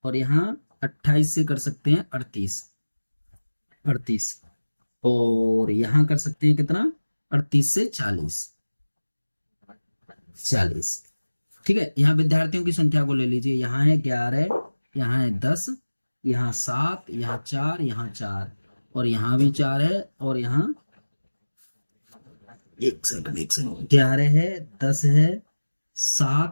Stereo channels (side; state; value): both; inverted; correlation -1.00